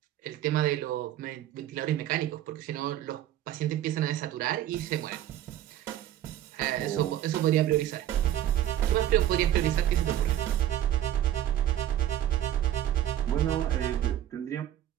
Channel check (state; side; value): quieter; left; 12.1 dB